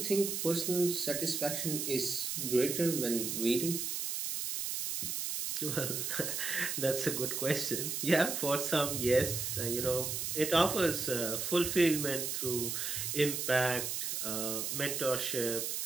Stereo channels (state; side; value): noise; right; hiss, 2 dB below the sound